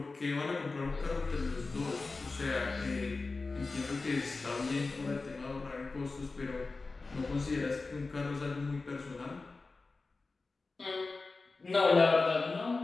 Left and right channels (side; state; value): right; quieter; 3.8 dB